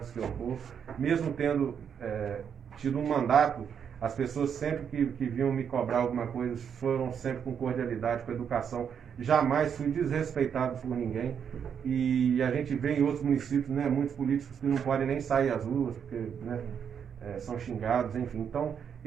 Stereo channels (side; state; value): left; quieter; 7.7 dB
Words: que eu for, mesmo tendo tido um mandato. As pessoas sempre que vinham me cobrar alguma coisa foram sempre com cordialidade, com educação. Jamais fui desrespeitado por ninguém. E a gente vê em outros municípios, né, muitos políticos que não podem nem sair às ruas, porque né, são xingados, enfim. Então,